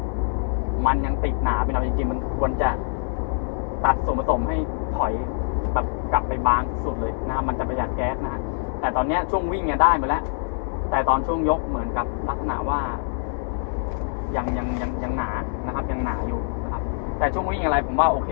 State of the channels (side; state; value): right; silent; digital silence